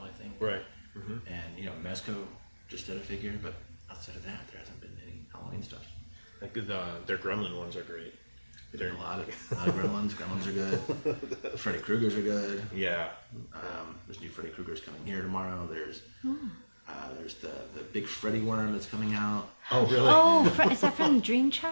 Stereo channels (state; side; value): inverted; both; correlation -1.00